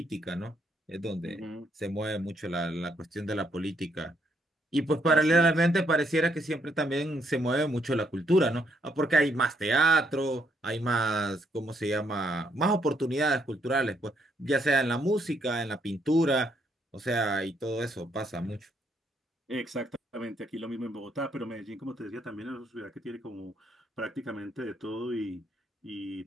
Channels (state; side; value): normal; both; correlation 0.73